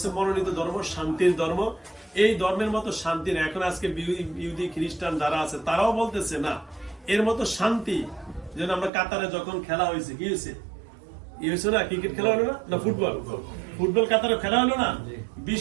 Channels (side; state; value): left; drops out; at 8.9 s